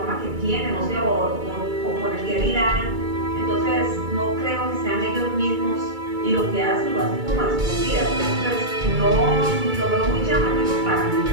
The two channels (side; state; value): left; late; 2.3 ms